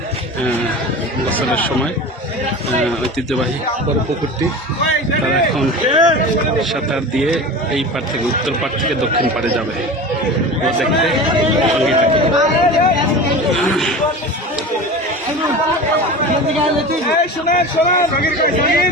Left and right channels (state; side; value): normal; both; correlation 0.32